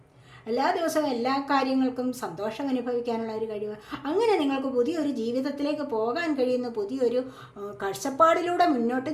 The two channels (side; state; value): both; identical; correlation 1.00